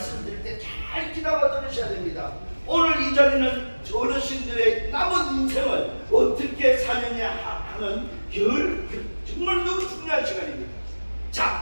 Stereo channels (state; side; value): inverted; both; correlation -1.00